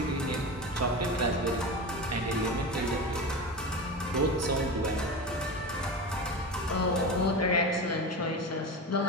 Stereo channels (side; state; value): both; normal; correlation 0.25